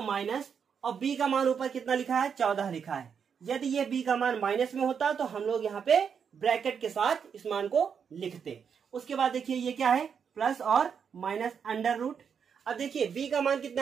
माइनस, और b का मान ऊपर कितना लिखा है, 14 लिखा है। यदि ये b का मान माइनस में होता तो हम लोग यहाँ पे ब्रैकेट के साथ इस मान को लिखते। उसके बाद देखिए ये क्या है, प्लस और माइनस अंडर रूट। अब देखिए b का मान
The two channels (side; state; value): left; quieter; 6.9 dB